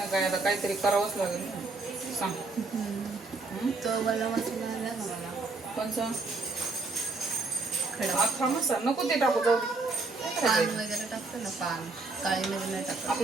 काय, आता काहीतरी करावंच लागेल ना. सांग. तो मला मसाला आला ना मला. कोणचा? खडा अख्खा मसाला नको, ते टाकू, जाऊ दे. पान वगैरे टाकतो ना, पान काळी मध्ये नाही टाकत.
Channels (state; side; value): quieter; left; 3.6 dB